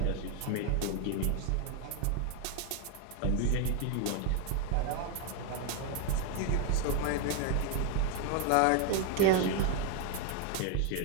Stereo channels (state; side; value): different; both; correlation 0.01